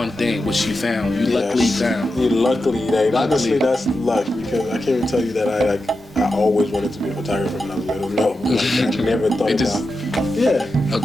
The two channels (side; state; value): both; normal; correlation 0.90